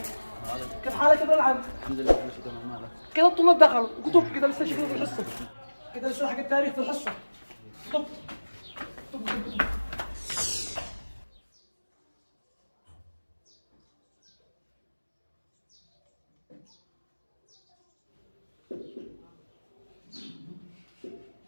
كيف حالك يا ابن العم؟ الحمد لله كل شيء تمام. مالك؟ كذا الطلاب دخلوا كتب كذا لسه شكله في الحصه كذا لسه حق التاريخ في الحصه طب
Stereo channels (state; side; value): inverted; both; correlation -1.00